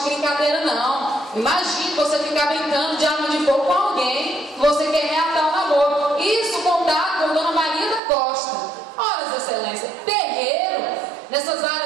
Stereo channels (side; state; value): left; drops out; at 8.0 s